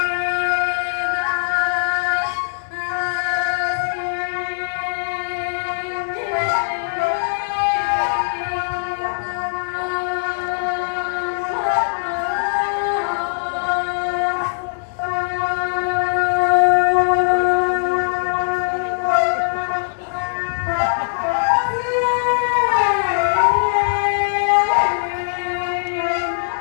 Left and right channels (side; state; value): right; silent; digital silence